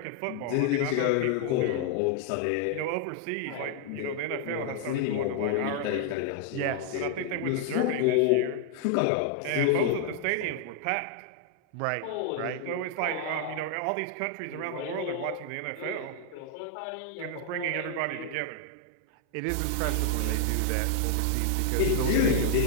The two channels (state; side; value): different; both; correlation 0.00